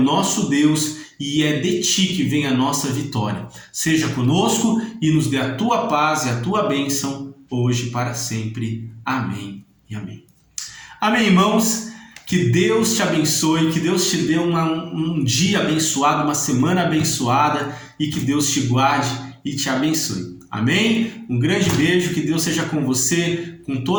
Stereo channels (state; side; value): identical; both; correlation 1.00